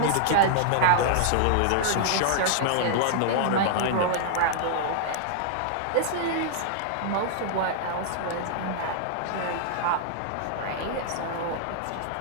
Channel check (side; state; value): both; different; correlation -0.01